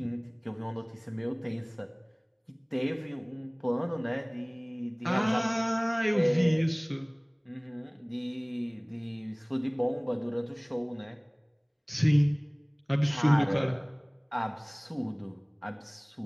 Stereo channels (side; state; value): both; identical; correlation 1.00